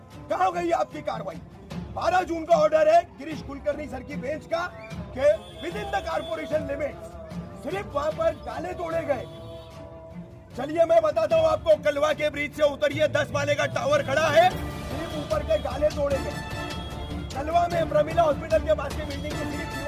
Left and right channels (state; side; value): identical; both; correlation 1.00